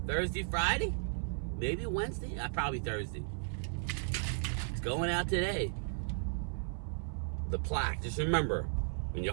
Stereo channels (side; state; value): left; silent; 54 dB below the other